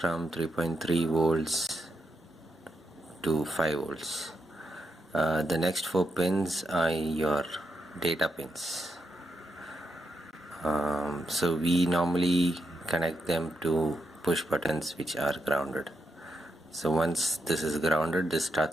3.3 volts to 5 volts. The next 4 pins are your data pins. So we normally connect them to push buttons which are grounded. So once this is grounded, this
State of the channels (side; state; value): both; normal; correlation 0.83